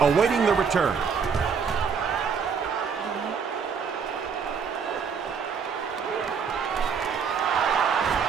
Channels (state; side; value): quieter; left; 6.2 dB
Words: awaiting the return.